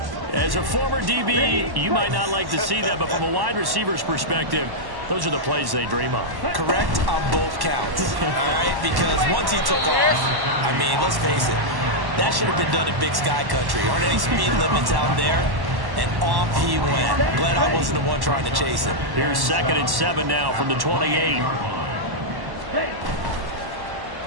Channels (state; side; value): late; left; 1.1 ms